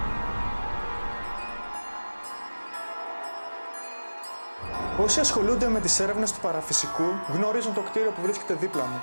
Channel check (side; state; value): both; inverted; correlation -1.00